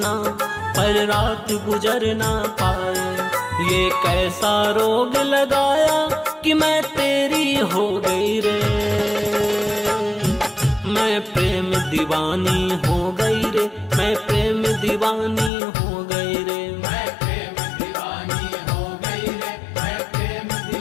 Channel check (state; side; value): drops out; right; at 15.5 s